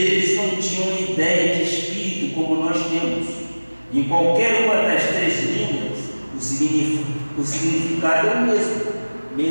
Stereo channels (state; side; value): inverted; both; correlation -1.00